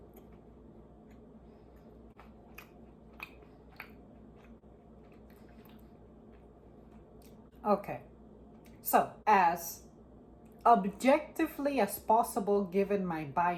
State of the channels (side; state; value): both; identical; correlation 1.00